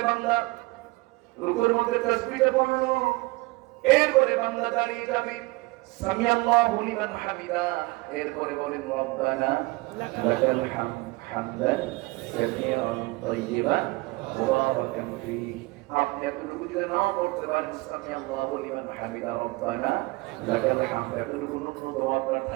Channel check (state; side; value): quieter; left; 23.0 dB